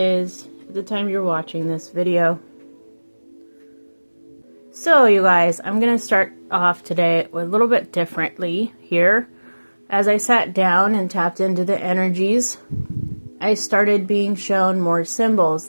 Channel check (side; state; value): both; inverted; correlation -1.00